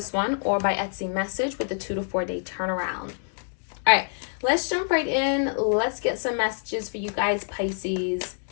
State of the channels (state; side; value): silent; right; digital silence